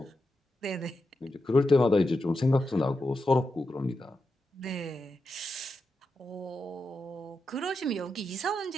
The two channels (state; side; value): normal; both; correlation 0.87